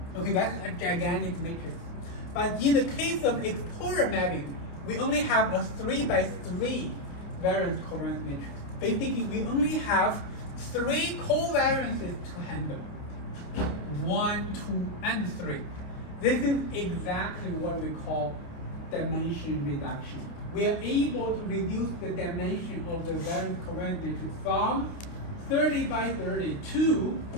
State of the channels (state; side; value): late; right; 29 ms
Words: Okay, that's a gigantic matrix. But in the case of exposure mapping, we only have a 3 by 3 variance covariance matrix. Basically, we only have 3 covariances to handle. 1, 2, and 3. This is exactly what we call dimension reduction. We are able to reduce the dimension of the variance covariance matrix from 30 by 30 to